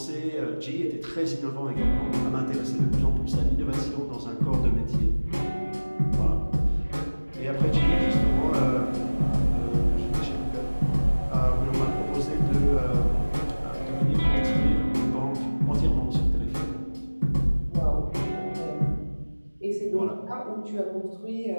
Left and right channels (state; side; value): inverted; both; correlation -1.00